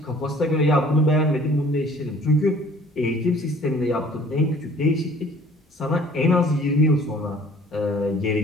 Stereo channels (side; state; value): both; normal; correlation 0.53